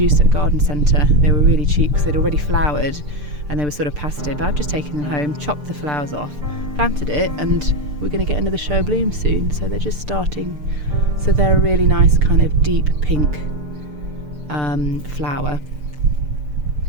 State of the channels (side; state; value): left; late; 6.7 ms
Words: at a garden centre. They were really cheap because they'd already flowered and they were sort of past it, but I've just taken them home, chopped the flowers off, planted it, and we're going to get another show of bloom soon. So they're just starting, so they're a really nice kind of deep pink flower.